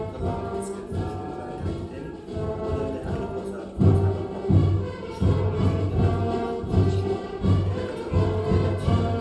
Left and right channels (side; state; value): both; identical; correlation 1.00